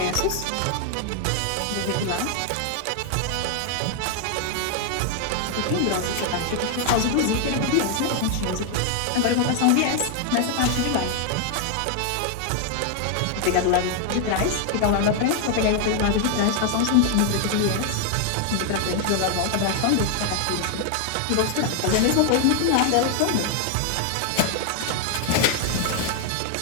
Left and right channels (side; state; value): both; different; correlation 0.00